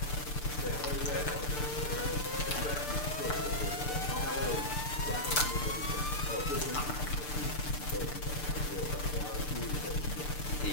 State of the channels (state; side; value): late; right; 6.8 ms